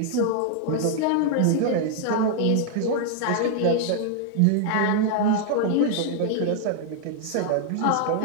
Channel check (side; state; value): both; different; correlation 0.00